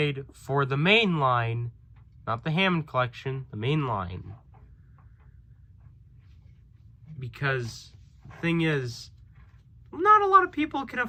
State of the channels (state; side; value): identical; both; correlation 1.00